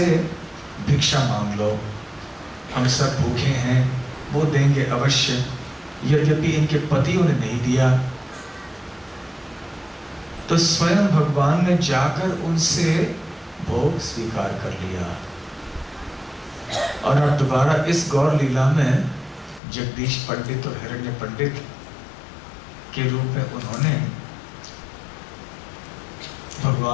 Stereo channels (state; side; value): drops out; right; at 19.6 s